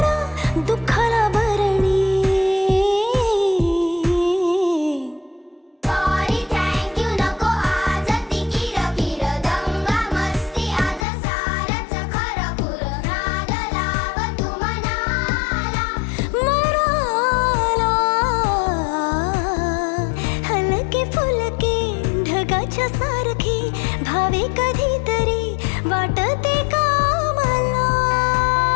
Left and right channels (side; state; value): right; drops out; at 11.1 s